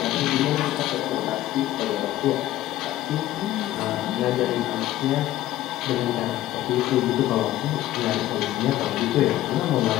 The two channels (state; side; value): quieter; right; 14.4 dB